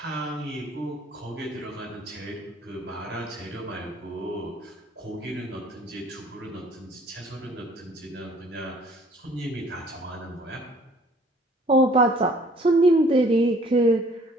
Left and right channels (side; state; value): both; normal; correlation 0.56